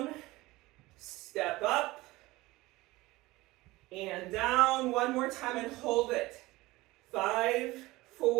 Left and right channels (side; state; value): left; quieter; 19.8 dB